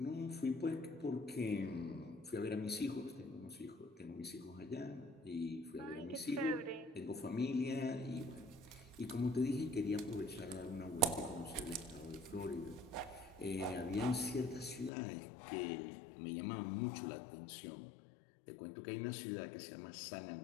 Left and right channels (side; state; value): right; drops out; at 14.9 s